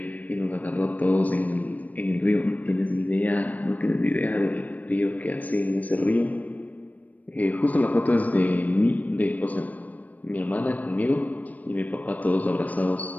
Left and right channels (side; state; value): right; late; 0.074 ms